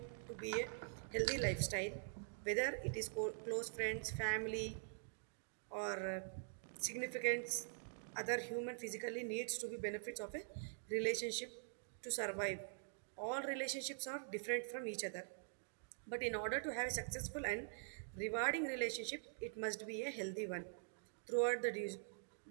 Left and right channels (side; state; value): left; silent; digital silence